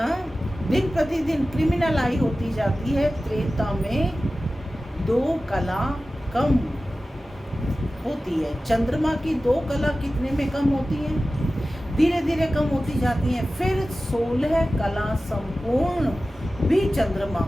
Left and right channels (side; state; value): both; normal; correlation 0.95